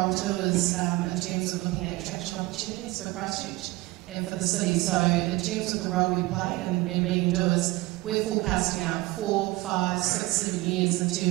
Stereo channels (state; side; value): quieter; left; 20.6 dB